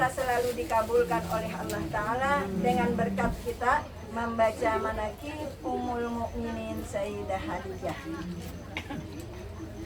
selalu dikabulkan oleh Allah Ta'ala dengan berkat kita membaca manakib Ummul Mukminin Sayyidah Khadijah.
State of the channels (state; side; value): identical; both; correlation 1.00